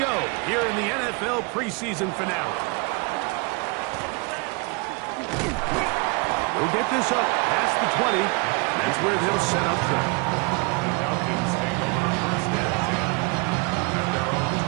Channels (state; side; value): quieter; left; 30.3 dB